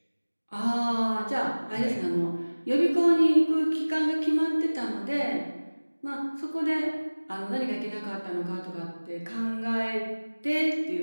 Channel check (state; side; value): inverted; both; correlation -1.00